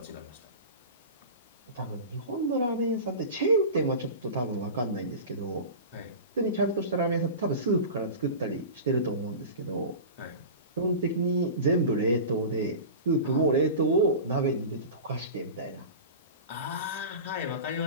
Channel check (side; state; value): both; inverted; correlation -0.31